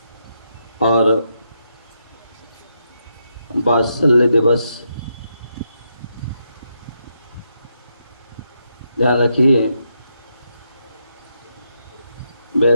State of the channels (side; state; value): both; inverted; correlation -0.81